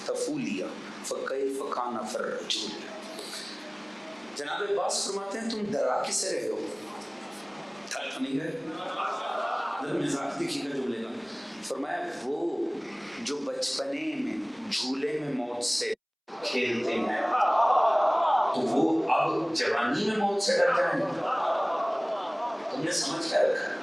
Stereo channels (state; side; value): identical; both; correlation 1.00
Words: فکیف کان فی الرجول. جناب عباس فرماتے ہیں تم ڈرا کسے رہے ہو؟ تھک نہیں گئے؟ ذرا مزاج دیکھیے گا جملے کا. فرمایا وہ جو بچپنے میں جھولے میں موت سے کھیلتے ہیں تو وہ اب جوانی میں موت سے ڈر جائیں گے. تم نے سمجھ کیا رکھا؟